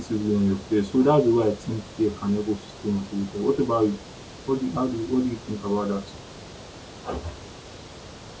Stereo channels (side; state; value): both; identical; correlation 1.00